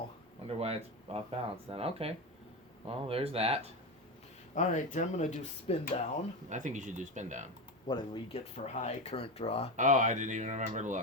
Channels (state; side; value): normal; both; correlation 0.17